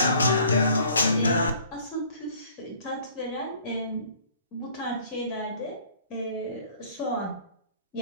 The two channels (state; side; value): inverted; both; correlation -0.55